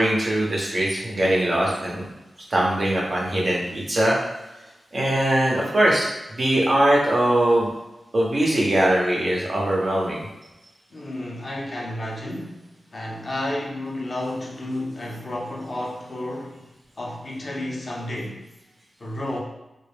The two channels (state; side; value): normal; both; correlation 0.93